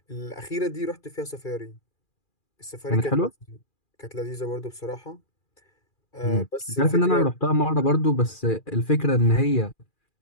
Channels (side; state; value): right; late; 2.4 ms